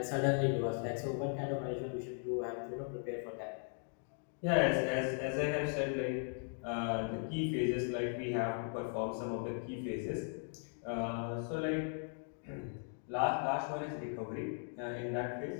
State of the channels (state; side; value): silent; right; 52 dB below the other